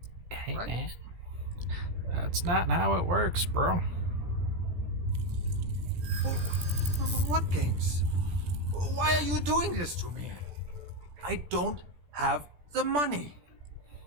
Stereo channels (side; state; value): left; late; 17 ms